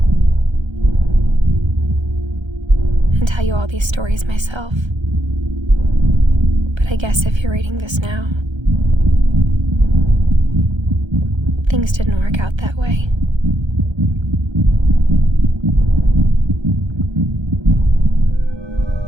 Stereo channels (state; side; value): late; left; 1.3 ms